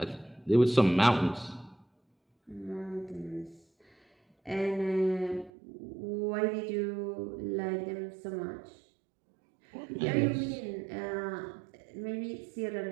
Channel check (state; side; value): drops out; left; at 5.5 s